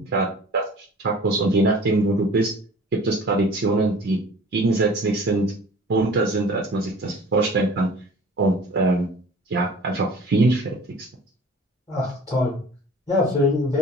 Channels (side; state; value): both; normal; correlation 0.45